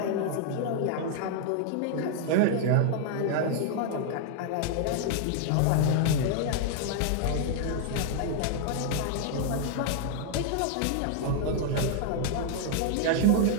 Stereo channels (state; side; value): different; both; correlation 0.00